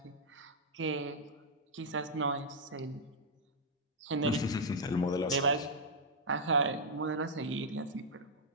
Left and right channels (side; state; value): both; normal; correlation -0.04